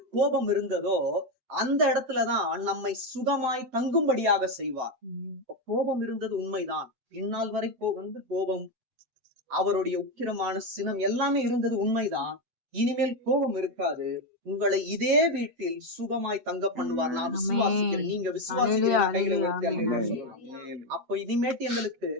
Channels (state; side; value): late; left; 8.0 ms